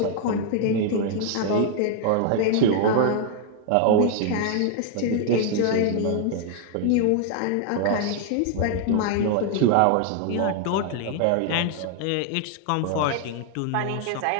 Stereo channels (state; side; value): different; both; correlation 0.00